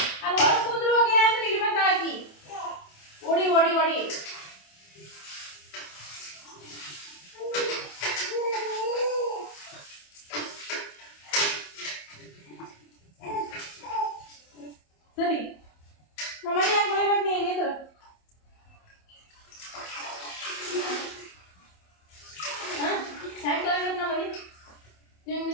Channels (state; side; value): late; right; 27 ms